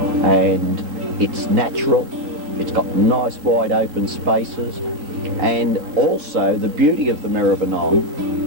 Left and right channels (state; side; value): late; left; 3.7 ms